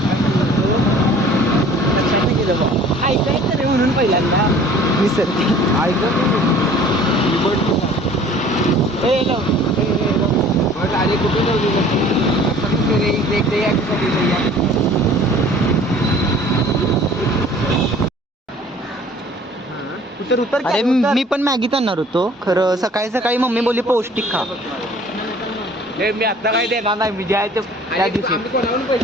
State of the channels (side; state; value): both; normal; correlation 0.50